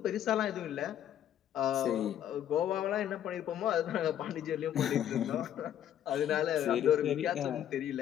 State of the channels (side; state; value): right; quieter; 10.6 dB